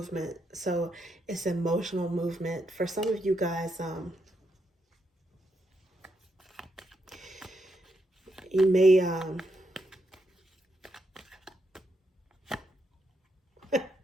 So it's emotional movement. For some of you guys, you may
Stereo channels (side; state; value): both; normal; correlation 0.80